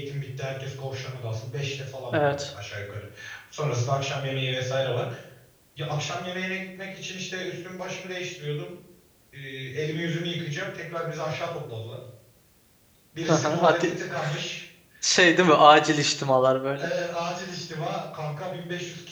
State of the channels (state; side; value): identical; both; correlation 1.00